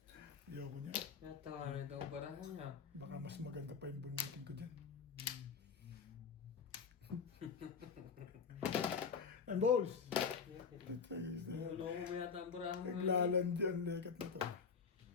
Ayoko niya. Natawa na itong barahan niya. Baka mas maganda pa yung bunutin ko dyan. And balls! Tatayos na yan. Nuloko mo yata ang barahan mo. Naglalandi ang legat na to.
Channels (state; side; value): quieter; right; 5.8 dB